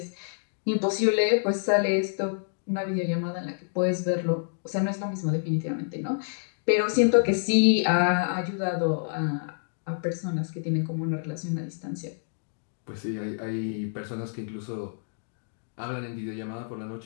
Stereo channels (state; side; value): silent; right; digital silence